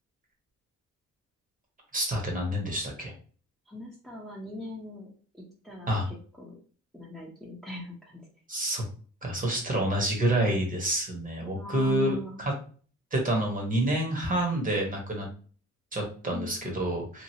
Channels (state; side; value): normal; both; correlation 0.46